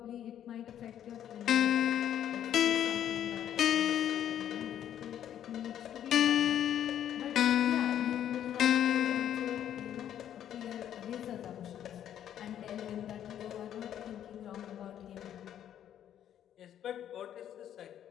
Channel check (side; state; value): right; quieter; 10.4 dB